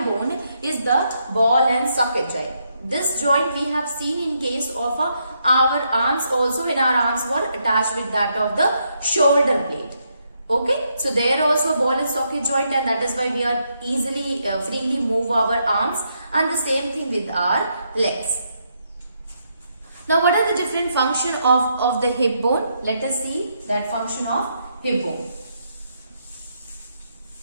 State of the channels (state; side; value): inverted; both; correlation -0.78